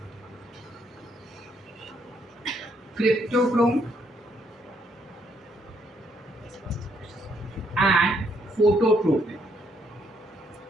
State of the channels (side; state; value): both; normal; correlation 0.72